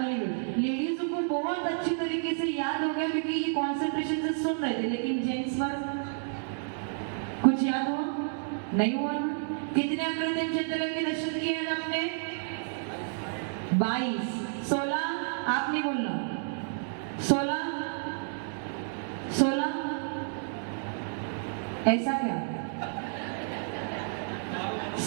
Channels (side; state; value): left; silent; digital silence